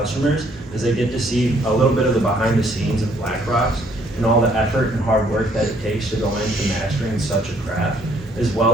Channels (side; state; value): both; normal; correlation 0.65